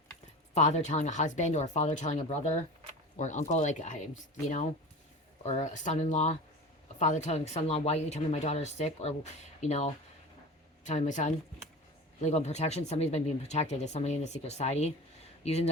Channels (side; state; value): both; normal; correlation 0.34